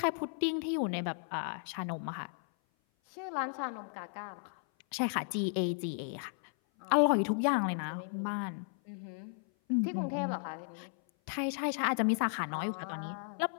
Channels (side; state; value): right; silent; 55 dB below the other